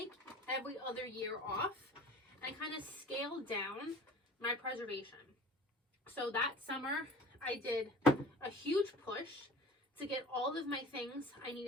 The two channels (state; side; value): normal; both; correlation 0.42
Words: every other year off and kind of scale down my preservation. So that summer, I did a huge push to get all of my things I